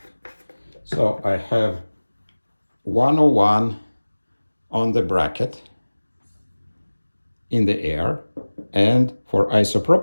So I have 101 on the bracket in the air, and for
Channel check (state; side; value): inverted; both; correlation -1.00